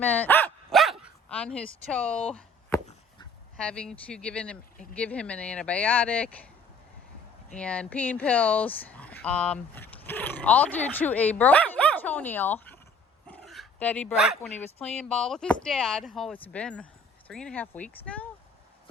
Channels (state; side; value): normal; both; correlation 0.54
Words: on his toe, having to give him an antibiotic and pain pills, all due to a broken toenail that he broke when he was playing ball with his dad. Oh, it's been 3.5 weeks now,